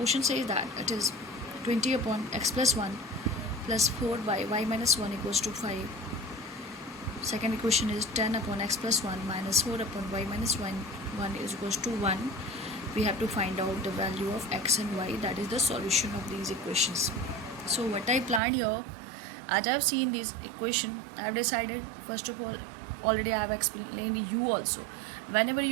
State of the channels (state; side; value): drops out; left; at 18.4 s